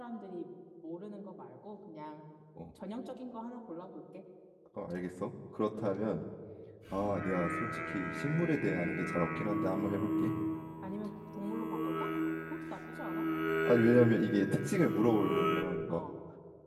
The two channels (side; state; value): both; identical; correlation 1.00